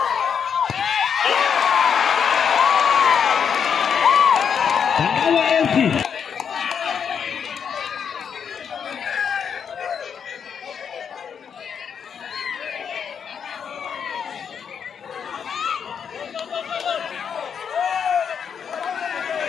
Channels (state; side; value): quieter; right; 7.2 dB